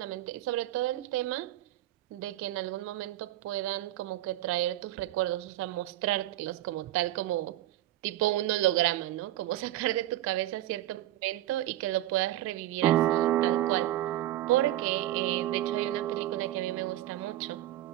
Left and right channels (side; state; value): left; quieter; 14.6 dB